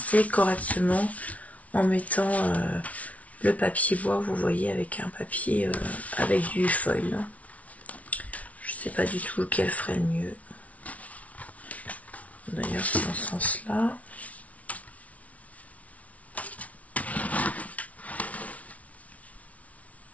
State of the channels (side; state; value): right; late; 0.067 ms